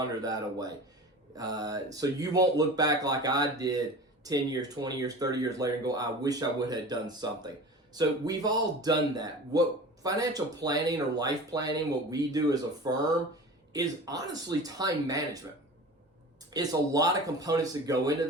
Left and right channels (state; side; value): normal; both; correlation 0.36